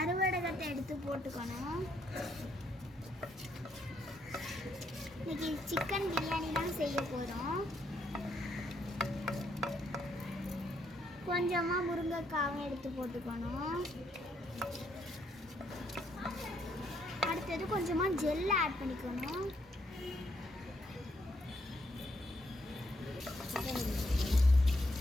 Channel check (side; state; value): both; normal; correlation 0.74